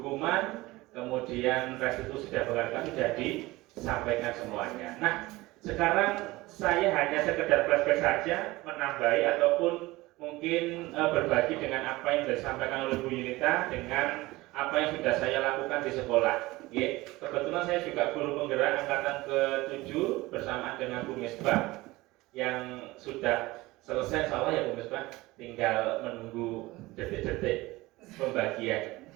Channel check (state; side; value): quieter; left; 20.0 dB